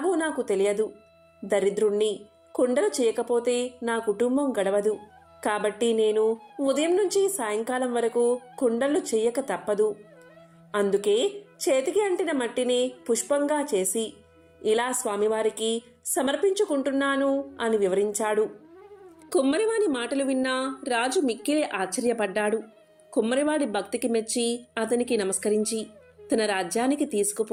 నాకు తెలియదు. దరిద్రుణ్ణి. కుండలు చేయకపోతే నా కుటుంబం గడవదు. కాబట్టి నేను ఉదయం నుంచి సాయంకాలం వరకు కుండలు చెయ్యక తప్పదు. అందుకే చేతికి అంటిన మట్టిని పుష్పంగా చేసి ఇలా స్వామివారికి సమర్పించుకుంటున్నాను అని వివరించాడు. కుమ్మరివాని మాటలు విన్నా రాజు మిక్కిలి ఆశ్చర్యపడ్డాడు. కుమ్మరివాడి భక్తికి మెచ్చి అతనికి నమస్కరించి తన రాజ్యానికి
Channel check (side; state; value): both; identical; correlation 1.00